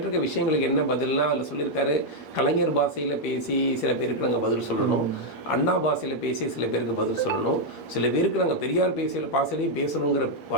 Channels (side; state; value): right; late; 8.5 ms